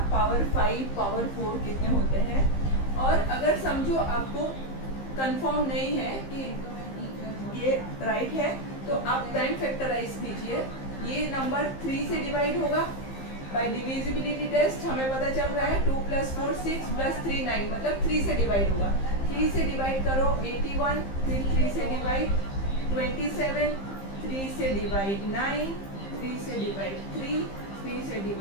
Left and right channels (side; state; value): right; late; 15 ms